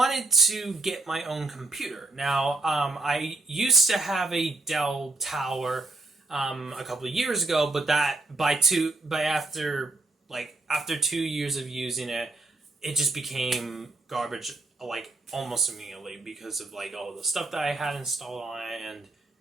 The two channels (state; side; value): quieter; left; 3.1 dB